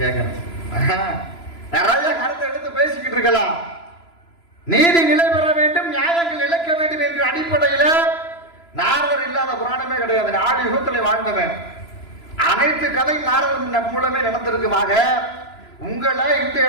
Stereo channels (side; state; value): right; late; 3.0 ms